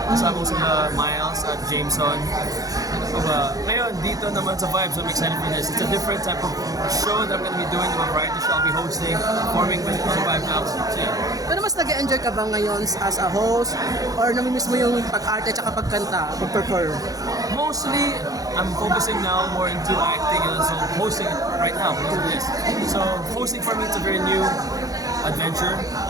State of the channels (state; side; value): late; left; 0.17 ms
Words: Kasama ko sila Miles at Jameson. Ngayon, dito naman sa Vibes, I'm excited for this. It's a different type of show that I'm going to be doing. A variety show I'll be hosting, performing with the Vibe Now. So, yeah. Pero mas nag-enjoy ka ba ngayon as a host? Or namimiss mo yung pag-arte at pagkanta, pag-perform? Mostly, I'm focusing now more into acting and so hosting right now because of this. So hosting for me it's a very new adventure.